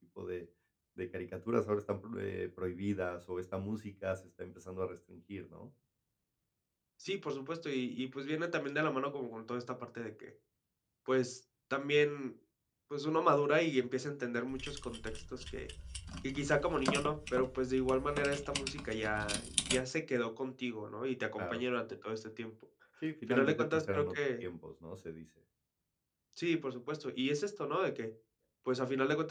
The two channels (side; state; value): both; identical; correlation 1.00